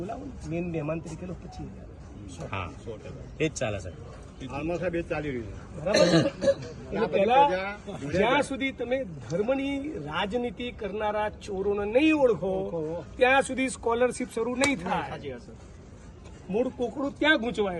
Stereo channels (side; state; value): both; identical; correlation 1.00